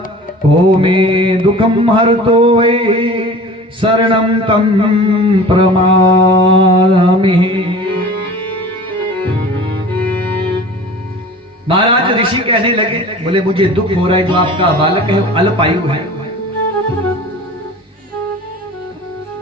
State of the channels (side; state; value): both; normal; correlation 0.41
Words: को में दुखम हरतो शरणम तम प्रमामि। महाराज ऋषि कहने लगे, बोले मुझे दुख हो रहा है, जो आपका बालक है अल्पायु है।